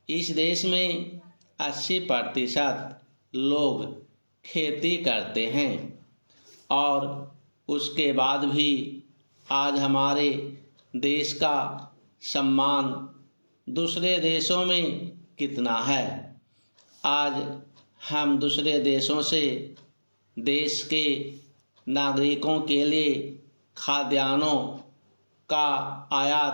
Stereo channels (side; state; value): both; inverted; correlation -1.00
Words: इस देश में 80% लोग खेती करते हैं और उसके बाद भी आज हमारे देश का सम्मान दूसरे देशों में कितना है। आज हम दूसरे देशों से देश के नागरिकों के लिए खाद्यान्नों का